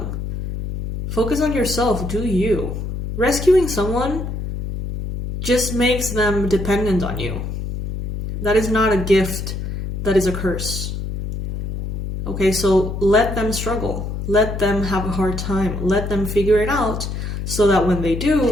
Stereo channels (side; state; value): left; noise; hum, 5 dB below the sound